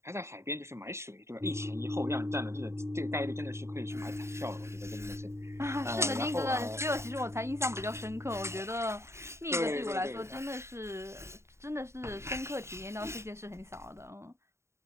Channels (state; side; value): late; left; 0.13 ms